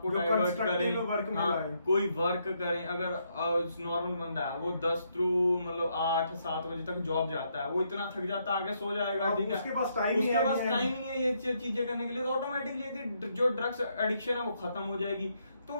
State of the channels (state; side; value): inverted; both; correlation -0.75